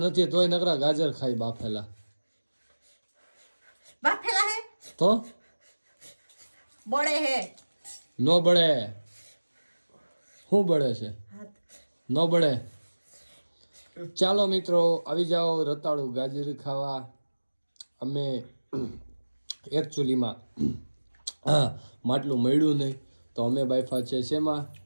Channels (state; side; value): inverted; both; correlation -1.00